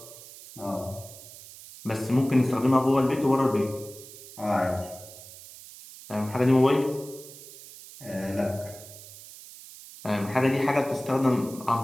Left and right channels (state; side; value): noise; right; hiss, 17 dB below the sound